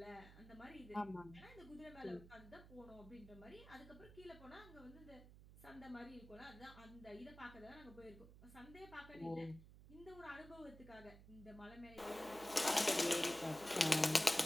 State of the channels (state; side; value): noise; right; hum, 18 dB below the sound